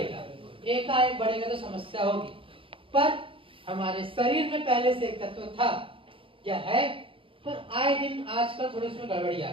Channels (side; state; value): left; late; 0.26 ms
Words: एकाएक बढ़ेगा तो समस्या होगी। पर हमारे शरीर में पहले से एक तत्व था, क्या है? पर आए दिन आजकल थोड़ी उसमें गड़बड़ी आ